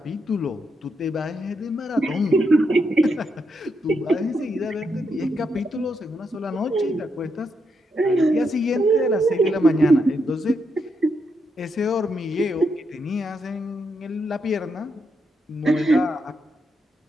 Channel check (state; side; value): normal; both; correlation 0.81